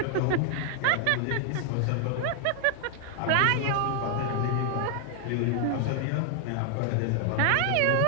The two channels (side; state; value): both; different; correlation 0.00